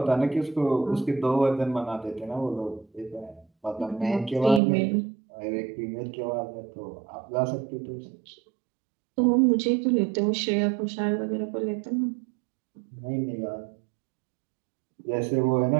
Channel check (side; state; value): left; drops out; at 4.6 s